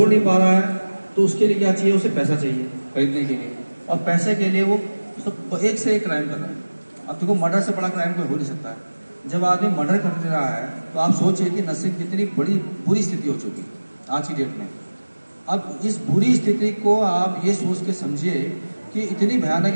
नहीं पा रहा है तो उसके लिए क्या चाहिए, उसे पैसा चाहिए खरीदने के लिए, और पैसे के लिए वो सब एक से एक क्राइम कर रहा है। अब देखो मर्डर से बड़ा क्राइम कोई हो नहीं सकता है। जब आदमी मर्डर कर दे रहा है तो आप सोचिए कि नशे की कितनी बड़ी बुरी स्थिति हो चुकी है आज की डेट में। अब इस बुरी स्थिति को आप ये सोच के समझिए कि इतनी भयानक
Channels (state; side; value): inverted; both; correlation -1.00